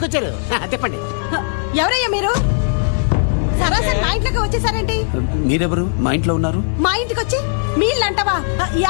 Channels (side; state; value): right; silent; 68 dB below the other